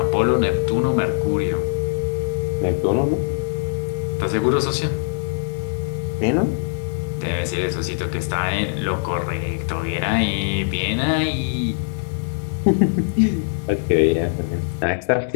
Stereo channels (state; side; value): silent; right; digital silence